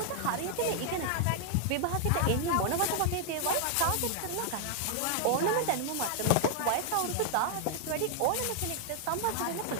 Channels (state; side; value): different; both; correlation 0.00